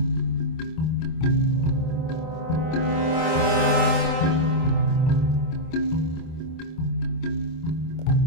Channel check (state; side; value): late; right; 25 ms